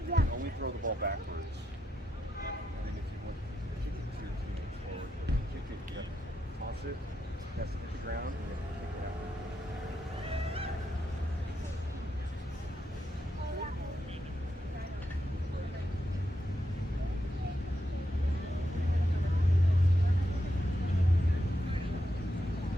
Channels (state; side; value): normal; both; correlation 0.84